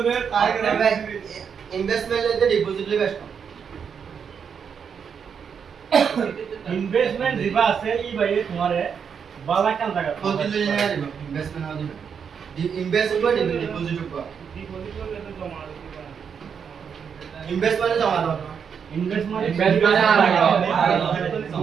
তাই করে ইনভেস্টমেন্ট এতে ডিপোজিট লে বেস্ট ইনভেস্টমেন্ট দিবা আছে ই ভাই তোমারে বালা কান জায়গা প্রতি দিন না দিব ইনভেস্টমেন্ট না দিব ইনভেস্ট করব ডিপোজিট করব ডিপোজিট করলে তো জমা দিতে ইনভেস্টমেন্ট জমা দাও ইনভেস্টমেন্ট Investment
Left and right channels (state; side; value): quieter; left; 6.9 dB